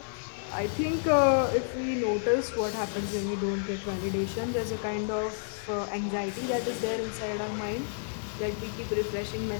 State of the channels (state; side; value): silent; right; digital silence